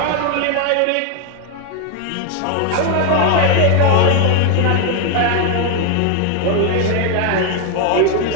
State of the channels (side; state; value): both; different; correlation 0.01